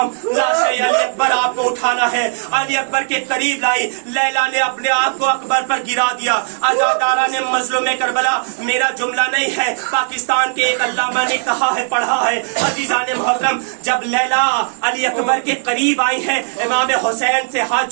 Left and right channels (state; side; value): silent; left; digital silence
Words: लाशे अली अकबर आपको उठाना है, अली अकबर के करीब लाई। लैला ने अपने आप को अकबर पर गिरा दिया। अज़ादारा ने मज़लूमे करबला, मेरा जुमला नहीं है, पाकिस्तान के एक अल्लामा ने कहा है, पढ़ा है। अज़ीज़ाने मोहतरम, जब लैला अली अकबर के करीब आई है, इमाम हुसैन से हाथ